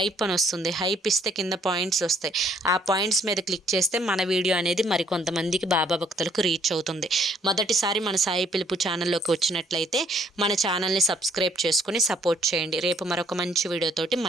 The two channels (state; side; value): normal; both; correlation 0.64